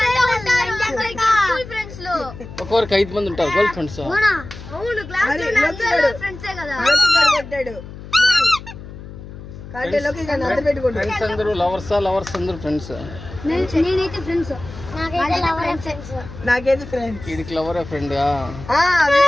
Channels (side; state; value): left; noise; hum, 14 dB below the sound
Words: ఒక్కొక్కరికి 5 మంది ఉంటారు గర్ల్ ఫ్రెండ్స్. అవును, క్లాస్ ఫ్రెండ్సే కదా. ఫ్రెండ్స్ అందరూ లవర్స్ అందరూ ఫ్రెండ్స్. నేనైతే ఫ్రెండ్స్. నాకైతే ఫ్రెండ్స్. వీడికి లవరే ఫ్రెండ్.